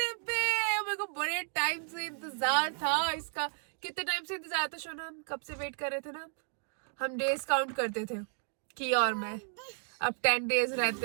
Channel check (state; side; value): silent; left; 56 dB below the other